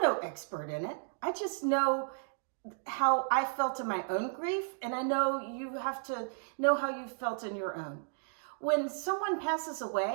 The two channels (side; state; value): left; silent; digital silence